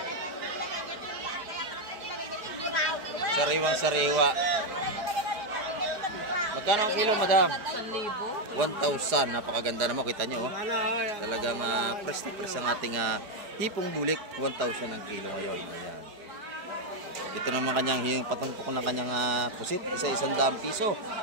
Sariwang sariwa. Magkano ang kilo, Madam? 1,000. 1,000. Napakaganda naman, kita nyo, oh. Talagang press na press ang ating hipong bulik. 1,000 ang kilo ngayon. Ayan. Ito naman kanyang patumpok ng kanyang pusit. Isa-100 piso.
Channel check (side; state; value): left; late; 4.8 ms